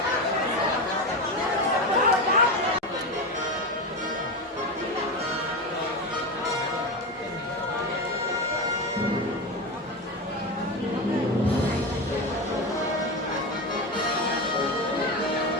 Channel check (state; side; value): normal; both; correlation 0.19